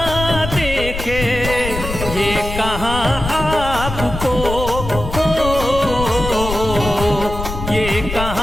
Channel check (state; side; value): noise; left; rumble, 7 dB below the sound